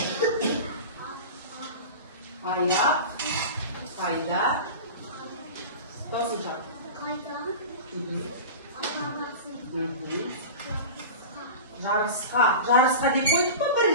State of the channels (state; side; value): inverted; both; correlation -0.31